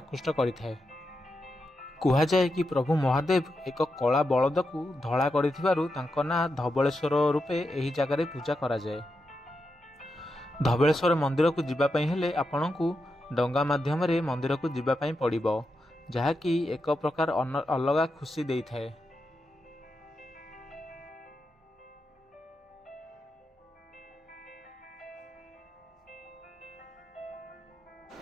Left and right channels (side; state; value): both; normal; correlation 0.87